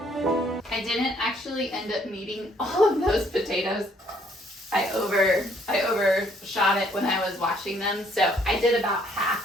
I didn't actually end up needing all of those potatoes. I overshot it when I was washing them, so I did about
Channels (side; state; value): both; normal; correlation 0.65